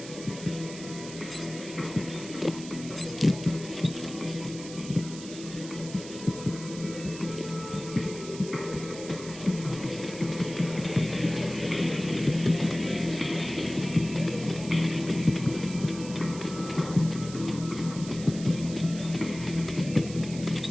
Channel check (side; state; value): right; noise; hiss, 13 dB below the sound